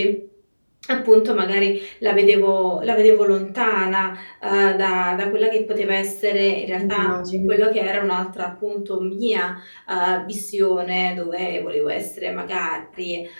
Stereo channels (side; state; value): both; inverted; correlation -1.00